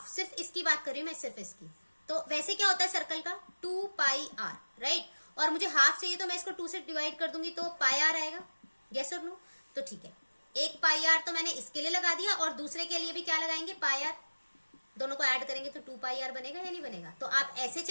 सिर्फ इसकी बात कर रही हूं मैं, सिर्फ इसकी। तो वैसे क्या होता है सर्कल का? 2 पाई आर, राइट। और मुझे हाफ चाहिए तो मैं इसको 2 से डिवाइड कर दूंगी तो पाई आर आएगा, यस और नो। तो ठीक है, एक पाई आर तो मैंने इसके लिए लगा दिया, और दूसरे के लिए भी क्या लगाएंगे? पाई आर। दोनों को ऐड करेंगे तो 2 पाई आर बनेगा या नहीं बनेगा? तो आप ऐसे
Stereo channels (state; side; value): inverted; both; correlation -1.00